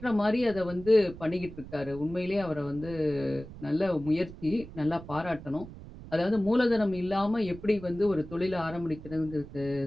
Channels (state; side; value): noise; right; rumble, 15 dB below the sound